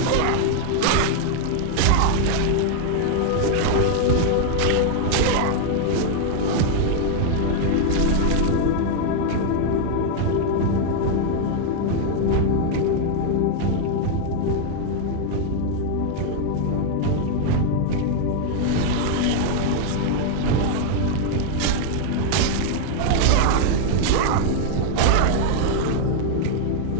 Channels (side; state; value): both; different; correlation 0.00